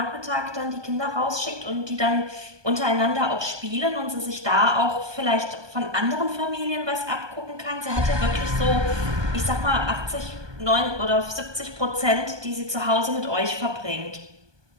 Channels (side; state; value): left; late; 1.2 ms